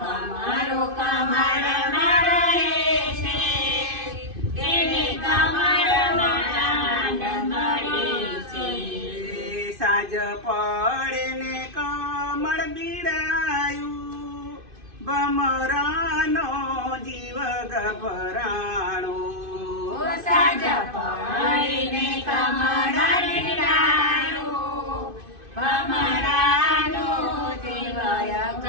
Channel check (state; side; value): late; left; 2.5 ms